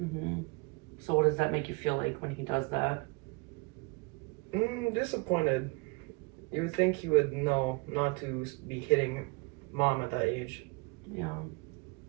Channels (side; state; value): left; quieter; 30.2 dB